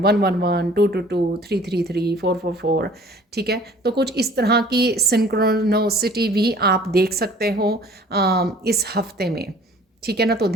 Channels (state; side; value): normal; both; correlation 0.52